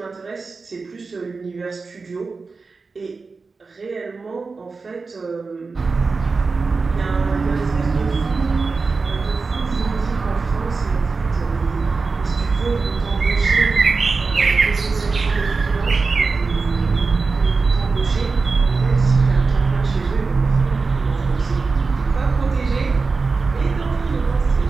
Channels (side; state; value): left; quieter; 4.3 dB